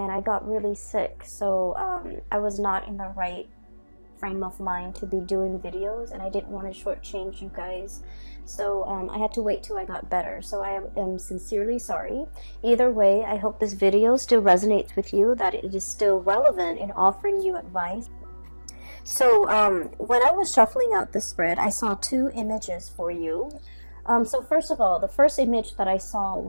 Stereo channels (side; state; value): both; inverted; correlation -1.00